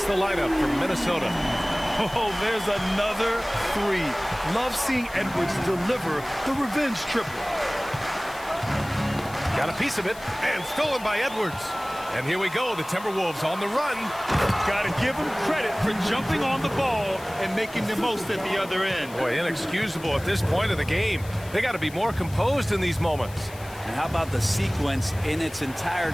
the lineup from Minnesota. Oh, there's another 3. Love seeing Edwards deliver the revenge triple. Got a piece of it, and stolen by Edwards. And here we go, the Timberwolves on the run. Got to give them credit for jumping on the ball and making the most at the other end. Boy, inexcusable at this point of the game. They got to be more composed in these moments. And how about the sequence in its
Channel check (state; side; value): noise; left; hiss, 19 dB below the sound